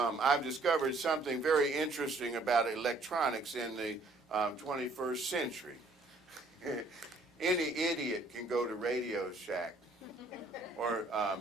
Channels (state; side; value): quieter; left; 3.1 dB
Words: discovered something very interesting about electronics in the 21st century. Any idiot can go to Radio Shack or